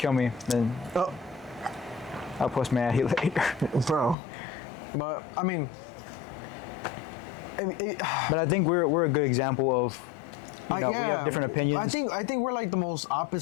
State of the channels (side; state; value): right; drops out; at 4.2 s